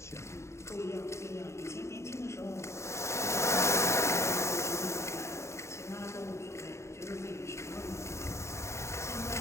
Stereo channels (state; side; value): late; right; 0.14 ms